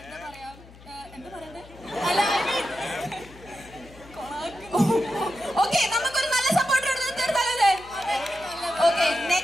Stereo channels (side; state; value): left; noise; hum, 21 dB below the sound